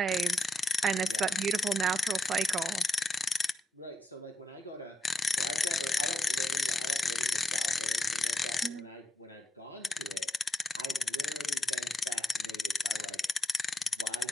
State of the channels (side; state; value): both; normal; correlation 0.82